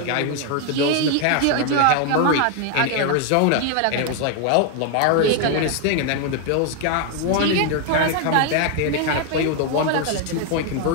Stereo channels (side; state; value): both; different; correlation 0.01